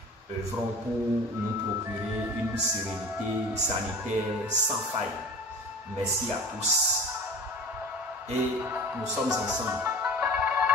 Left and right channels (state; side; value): normal; both; correlation 0.39